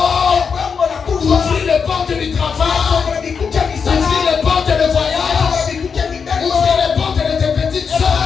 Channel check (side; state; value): right; quieter; 6.0 dB